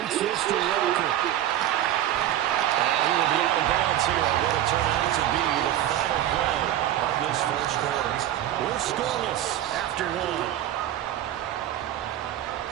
this to Walker. And he will be out of bounds here on what will turn out to be the final play of this first quarter. We're scoreless after 1.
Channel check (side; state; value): left; quieter; 12.4 dB